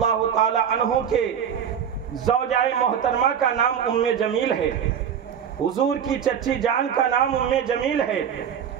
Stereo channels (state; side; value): quieter; left; 8.3 dB